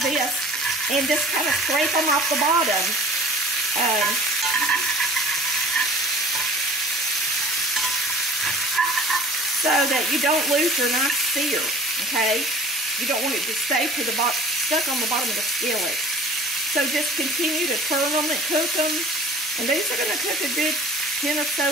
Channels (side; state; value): both; normal; correlation 0.46